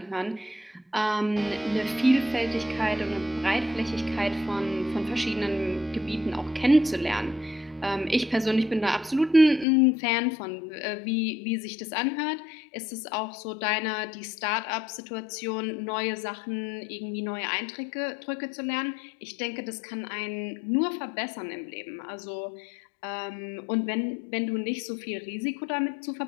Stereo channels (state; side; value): drops out; right; at 9.7 s